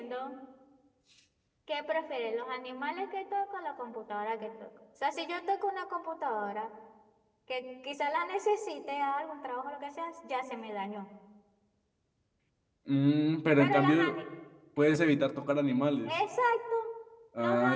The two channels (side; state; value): both; identical; correlation 1.00